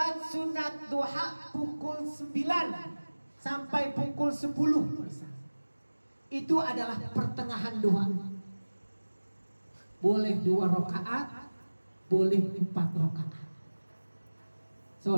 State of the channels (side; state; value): both; inverted; correlation -1.00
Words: sunat duha pukul 9 sampai pukul 10. Itu adalah pertengahan duha. Boleh 2 rakaat, boleh 4 rakaat.